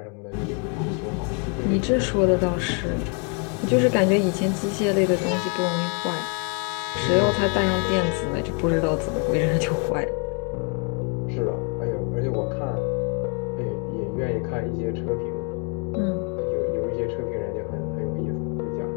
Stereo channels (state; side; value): quieter; right; 37.5 dB